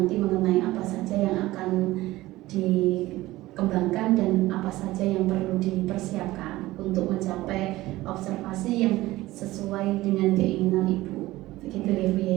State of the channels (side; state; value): left; quieter; 17.7 dB